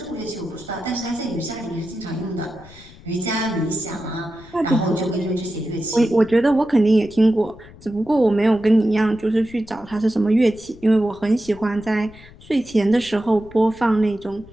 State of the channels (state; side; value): noise; left; rumble, 21 dB below the sound